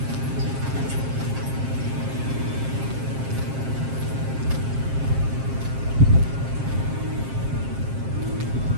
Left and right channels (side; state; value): left; late; 7.5 ms